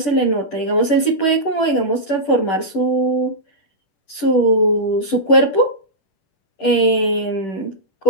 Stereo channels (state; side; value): late; right; 10 ms